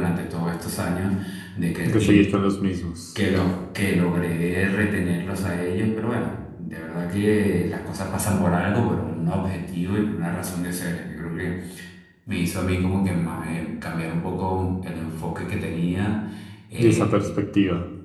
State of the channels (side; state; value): both; identical; correlation 1.00